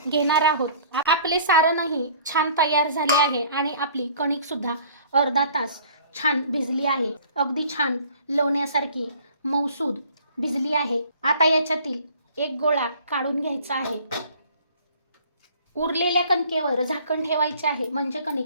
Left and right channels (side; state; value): both; inverted; correlation -0.52